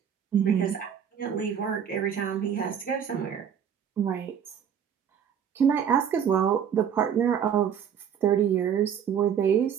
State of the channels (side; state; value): left; quieter; 8.3 dB